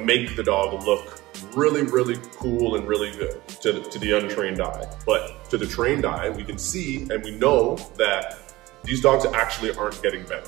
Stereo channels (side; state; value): left; quieter; 19.1 dB